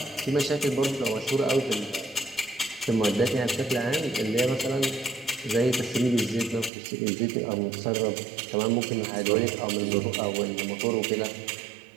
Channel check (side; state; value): left; drops out; at 6.7 s